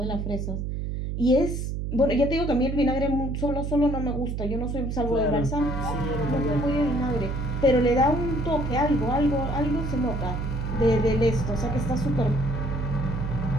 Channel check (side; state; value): right; noise; hum, 3 dB below the sound